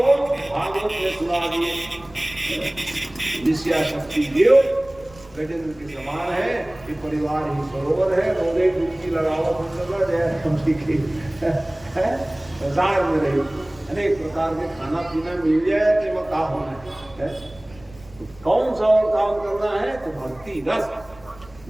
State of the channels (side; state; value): right; noise; rumble, 23 dB below the sound